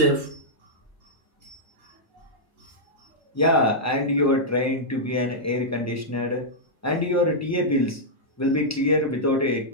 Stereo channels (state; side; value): normal; both; correlation -0.08